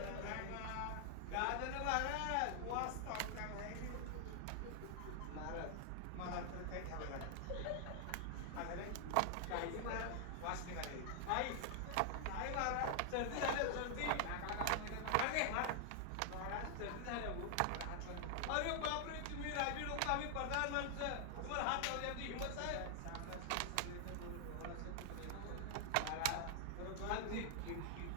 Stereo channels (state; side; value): different; both; correlation 0.00